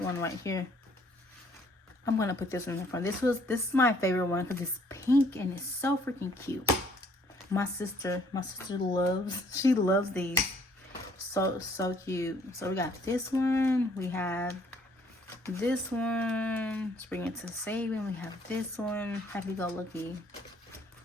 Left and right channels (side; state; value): both; normal; correlation 0.62